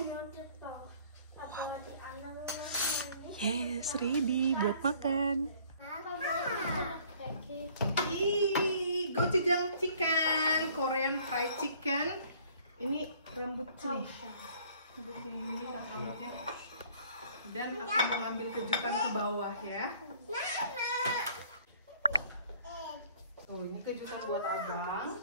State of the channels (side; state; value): both; inverted; correlation -0.57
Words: Yes, ready buat makan. Gochujang chicken, Korean fried chicken. Ini rambut sini. Rambutnya ini rambutnya. Dan aku mau ngambil kejutan ke bawah ya. Tuh, ini kejutan buat abang.